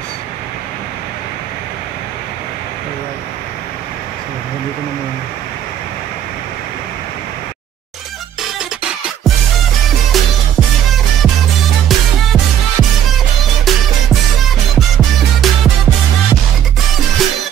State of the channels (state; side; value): quieter; left; 10.0 dB